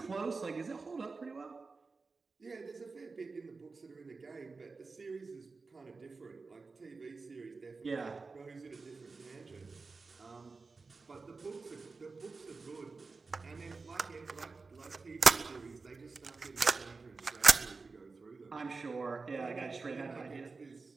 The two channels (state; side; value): quieter; left; 4.2 dB